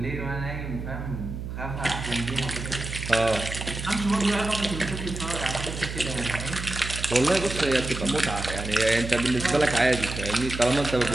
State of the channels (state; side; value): noise; right; hum, 7 dB below the sound